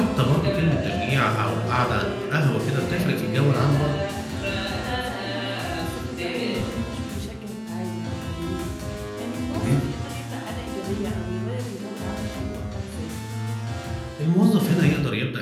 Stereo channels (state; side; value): identical; both; correlation 1.00